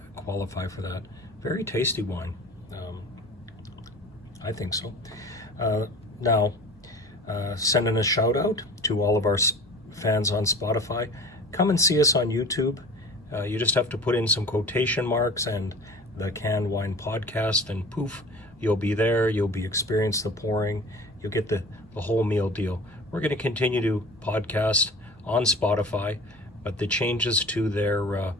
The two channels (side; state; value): both; normal; correlation 0.40